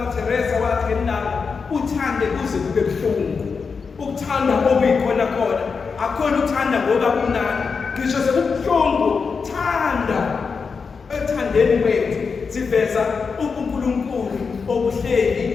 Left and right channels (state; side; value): quieter; right; 5.3 dB